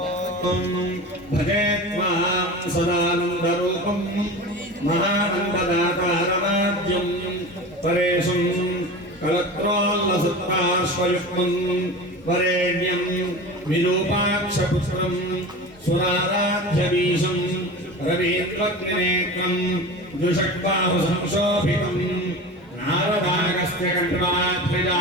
भजे त्वां सदानन्दरूपं महानन्ददातारमाद्यं परेशं कलत्रोल्लसत्पार्श्वयुक्तं वरेण्यं विरूपाक्षपुत्रं सुराराध्यवीशं रवीन्द्रग्निनेत्रं द्विषड्बाहुसंशोभितं नारदागस्य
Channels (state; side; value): normal; both; correlation 0.32